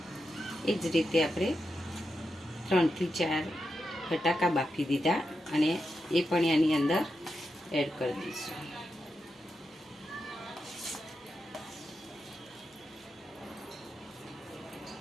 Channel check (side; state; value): both; normal; correlation 0.87